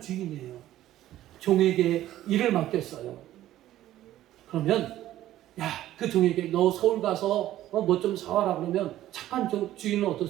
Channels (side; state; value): left; quieter; 13.7 dB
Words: 주인이에요. 종에게 일을 맡겼어요. 그러면 그 종에게 너 서울 가서 뭐 좀 사와라 그러면 착한 주인은